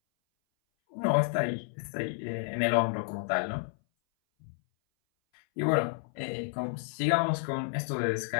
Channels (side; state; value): right; silent; 57 dB below the other